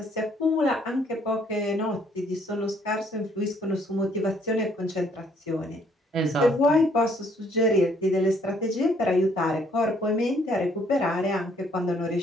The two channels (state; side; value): normal; both; correlation 0.65